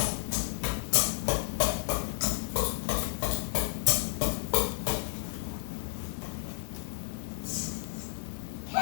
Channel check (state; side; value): silent; right; digital silence